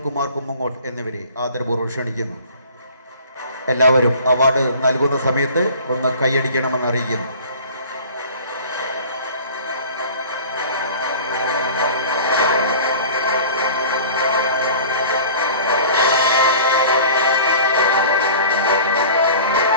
കുമാർ കുമ്മങ്ങോട്ട് എന്നിവരെ ആദരപൂർവ്വം ക്ഷണിക്കുന്നു. എല്ലാവരും അവാർഡ് നൽകുന്ന സമയത്ത് ഒന്ന് കൈയടിക്കണമെന്ന് അറിയിക്കുന്നു.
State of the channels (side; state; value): both; inverted; correlation -0.43